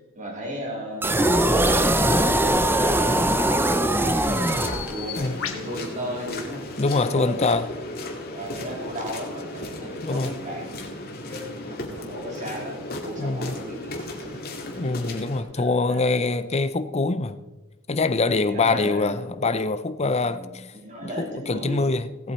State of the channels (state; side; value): normal; both; correlation 0.49